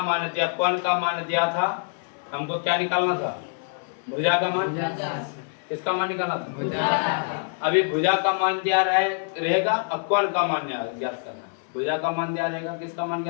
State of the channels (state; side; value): silent; right; 56 dB below the other